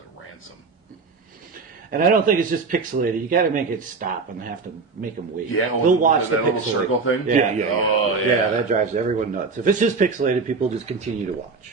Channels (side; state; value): left; quieter; 4.5 dB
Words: ransom. And I don't think it's just pixelated. You got to make it stop and have to make them wait. Yeah, they'll watch that the little pixelated. circle thing. Yeah. Oh, yeah. Yeah, that drives everyone nuts. If it's just pixelated, people just continue to